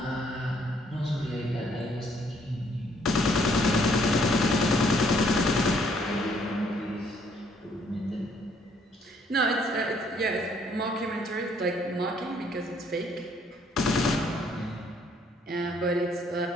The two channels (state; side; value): normal; both; correlation 0.66